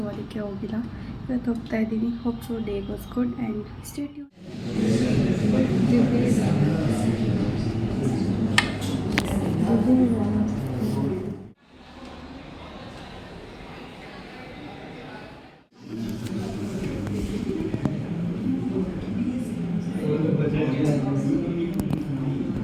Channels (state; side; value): identical; both; correlation 1.00